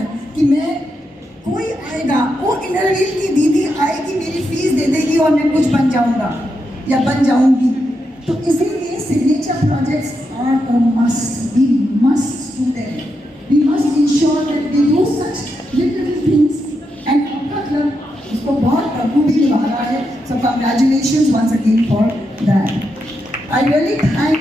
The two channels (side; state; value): both; normal; correlation 0.84